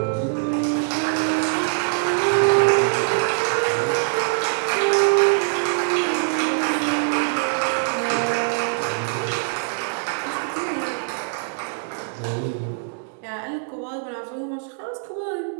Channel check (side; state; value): left; silent; 63 dB below the other